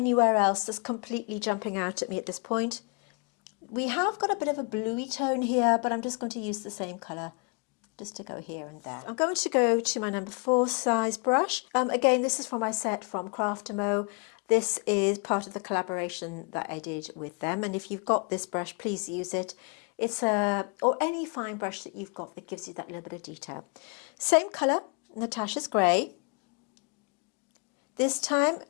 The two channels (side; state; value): right; quieter; 31.7 dB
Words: else that's completely jumping out at me at this point. We have got a bit of a bluey tone here, but I'm just going to use the same colour just to go here and there. I'm going to go to my number 4 size brush. Again, this is from my set from Craftamo. This is part of the collaboration that I did with them. And if you've got this brush, please use it. It's or any fine brush that you've got that gives you that little bit of detail. Same colour, Natasha's Grey. This time